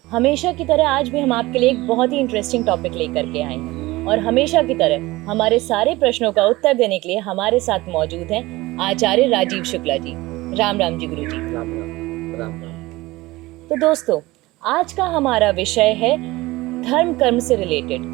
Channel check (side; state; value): left; quieter; 19.8 dB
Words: हमेशा की तरह आज भी हम आपके लिए एक बहुत ही इंटरेस्टिंग टॉपिक लेकर के आए हैं और हमेशा की तरह हमारे सारे प्रश्नों का उत्तर देने के लिए हमारे साथ मौजूद हैं आचार्य राजीव शुक्ला जी। राम राम जी गुरु जी। राम राम राम राम। तो दोस्तों, आज का हमारा विषय है धर्म कर्म से रिलेटेड,